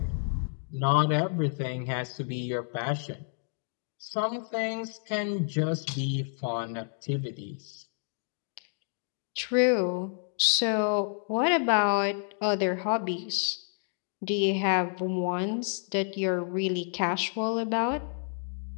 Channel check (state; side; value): silent; right; 58 dB below the other